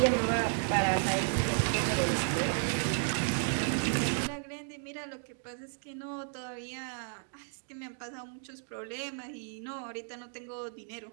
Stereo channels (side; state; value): left; silent; 56 dB below the other